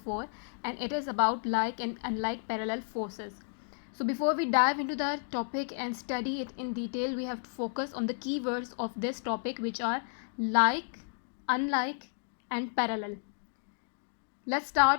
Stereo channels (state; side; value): silent; right; digital silence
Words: and it is about like and unlike parallel forces. So before we dive into the topic and study it in detail, we have to focus on the keywords of this topic, which are like, unlike, and parallel. Let's